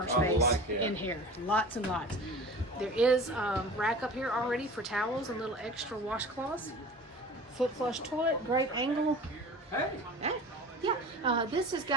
space in here, lots and lots. There is a rack up here already for towels and little extra washcloths. Foot flush toilet, great angle. Hey. Yeah, this has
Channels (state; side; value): normal; both; correlation 0.39